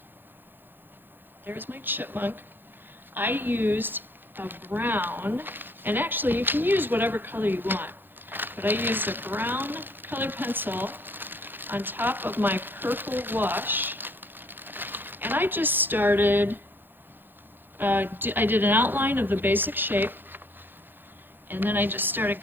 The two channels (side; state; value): left; late; 0.096 ms